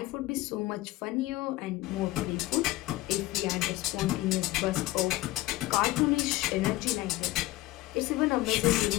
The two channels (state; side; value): quieter; right; 17.8 dB